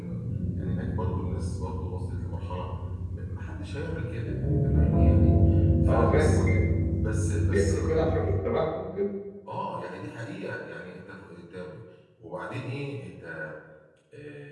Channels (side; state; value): both; identical; correlation 1.00